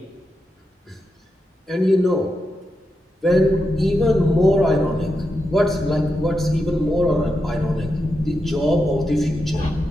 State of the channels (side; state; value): both; normal; correlation 0.87